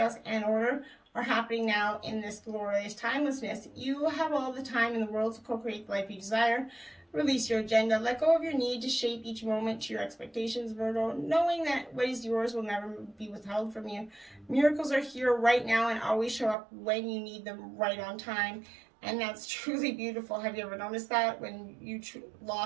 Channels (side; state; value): left; drops out; at 16.6 s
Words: and order are happening now in this glorious timelessness? You have all the time in the world to co-create the life you desire. Release your agenda. Let go of your need to shape each moment to your expectations, Virgo, knowing that what is yours will never be withheld from you. Miracles are here right now and always show up when you need them, right on time. And that's truly beautiful. Have you ever noticed that? When you